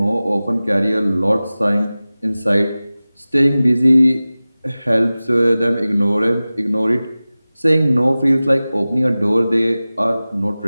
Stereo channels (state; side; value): inverted; both; correlation -0.97